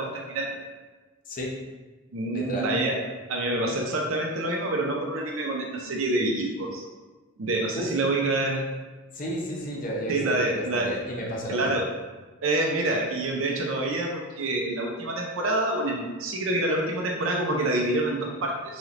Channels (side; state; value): both; normal; correlation 0.18